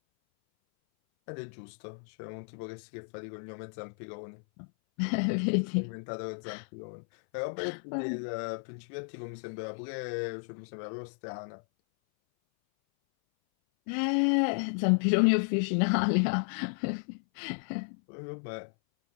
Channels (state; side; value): silent; right; 56 dB below the other